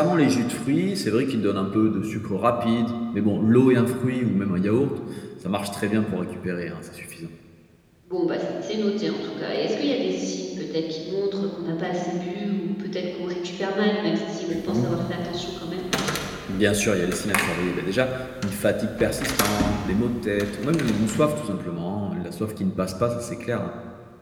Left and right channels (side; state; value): both; identical; correlation 1.00